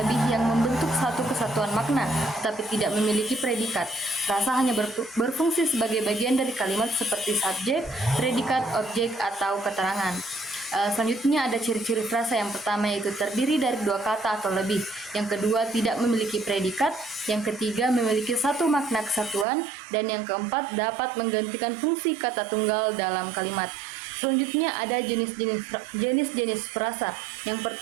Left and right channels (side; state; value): left; drops out; at 19.5 s